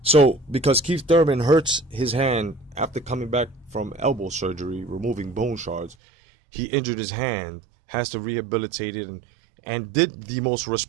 So, because Keith Thurman hurts his hand after coming back from elbow surgery, removing bone shards, he injured his hand, has to rehabilitate it, and did the most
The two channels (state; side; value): drops out; left; at 6.0 s